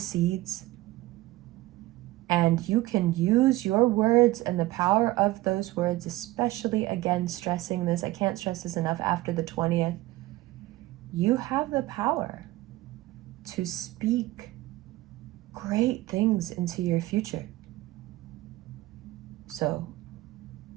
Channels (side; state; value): left; quieter; 18.0 dB